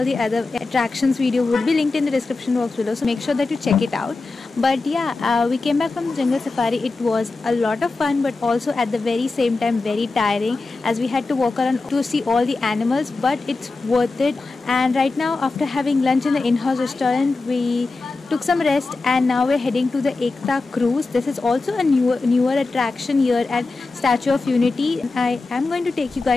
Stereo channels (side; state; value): right; quieter; 3.7 dB